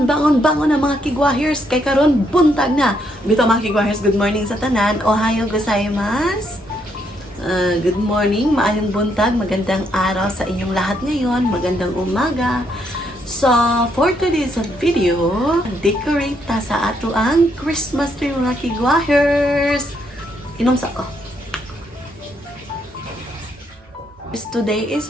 na mga kigwahers. Kay karon buntag na. Bito mga kigwahers, good morning sa tanan. Ohayo gozaimasu. Good morning, maayong buntag, magandang araw sa inyong lahat ngayon, magandang umaga. So, for today's video, decorate ta sa ato ang Christmas tree mga kigwahers. Inom sa ko. Today is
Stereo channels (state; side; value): normal; both; correlation 0.74